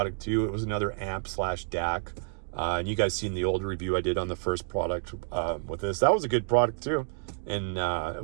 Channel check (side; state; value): left; silent; digital silence